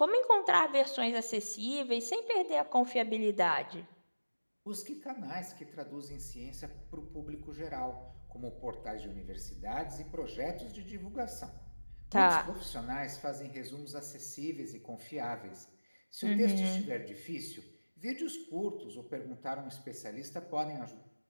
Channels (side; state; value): both; inverted; correlation -1.00